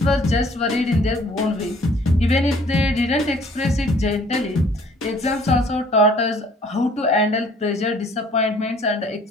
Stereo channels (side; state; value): both; normal; correlation 0.56